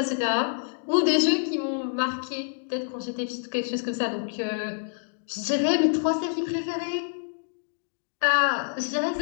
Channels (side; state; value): right; silent; digital silence